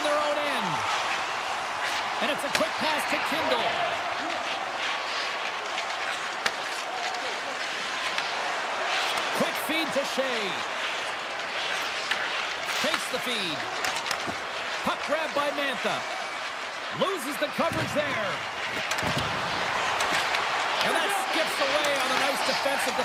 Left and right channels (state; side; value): identical; both; correlation 1.00